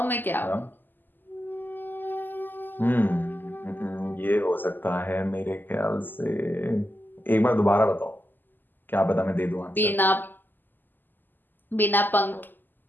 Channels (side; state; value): right; late; 0.091 ms